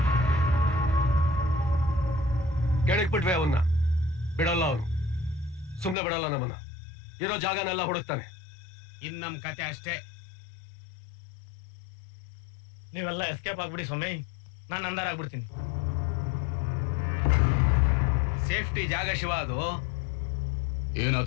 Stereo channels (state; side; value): drops out; right; at 6.0 s